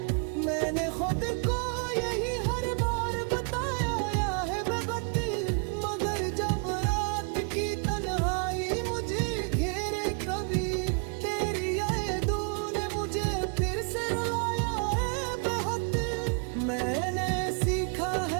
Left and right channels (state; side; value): quieter; left; 37.7 dB